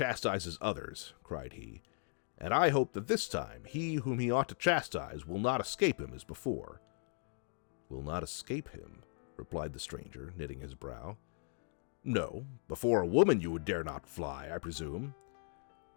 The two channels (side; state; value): right; silent; 53 dB below the other